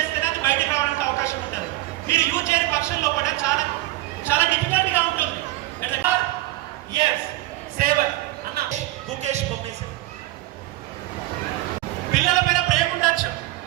అది బయటకు రావడానికి అవకాశం ఉంటుంది. మీరు యూజ్ చేయని పక్షంలో కూడా చాలా చాలా డిఫికల్ట్ గా ఉంటుంది. గుకేష్ బొమ్మేసి పిల్లల పైన ప్రేమ ఉండొచ్చు,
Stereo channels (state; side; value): quieter; left; 17.7 dB